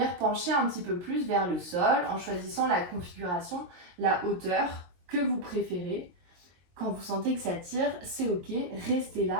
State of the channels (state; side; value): late; left; 22 ms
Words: pencher un petit peu plus vers le sol en choisissant la configuration, la hauteur que vous préférez. Quand vous sentez que ça tire, c'est ok, restez